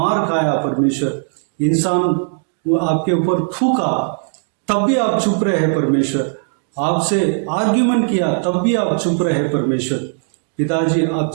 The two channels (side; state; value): left; silent; 63 dB below the other